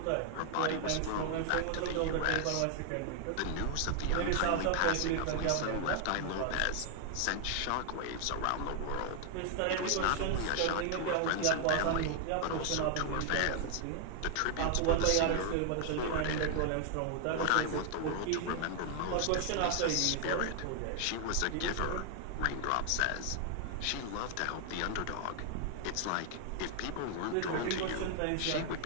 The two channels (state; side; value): different; both; correlation 0.00